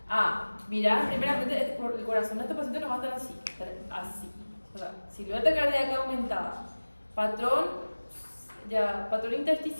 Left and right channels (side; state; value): both; inverted; correlation -1.00